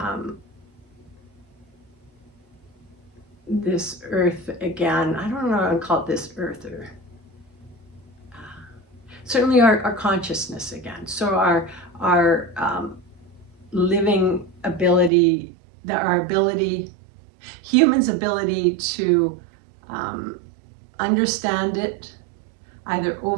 this earth again. I don't know if I call it this earth, or certainly our consciousness again. So our living ability, humans' ability to understand it, either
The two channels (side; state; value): left; drops out; at 15.1 s